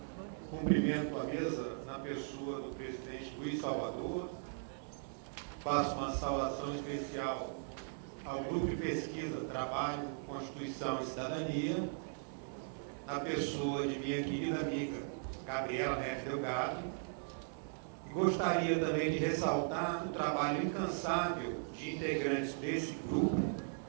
Cumprimento a mesa na pessoa do presidente Luiz Salvador. Faço uma saudação especial ao grupo de pesquisa Trabalho, Constituição e Cidadania, na pessoa de minha querida amiga Gabriela Neves Delgado. E gostaria também de ressaltar o trabalho incansável de integrantes desse grupo,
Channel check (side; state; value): left; silent; 52 dB below the other